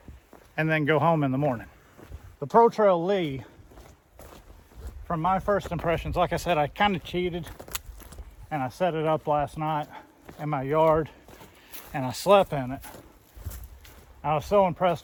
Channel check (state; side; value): identical; both; correlation 1.00